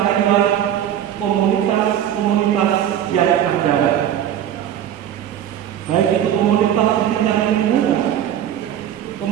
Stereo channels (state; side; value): quieter; left; 10.5 dB